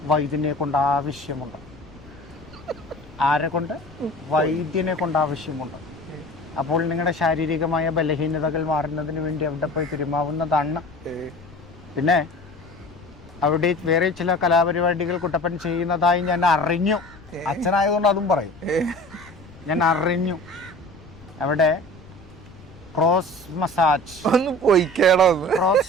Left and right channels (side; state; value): left; noise; rumble, 22 dB below the sound